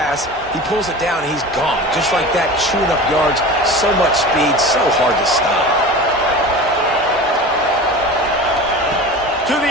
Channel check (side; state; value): both; normal; correlation 0.34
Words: He pulls it down, and he's gone. Just like that, chewing up yards. So much speed, so hard to stop. To the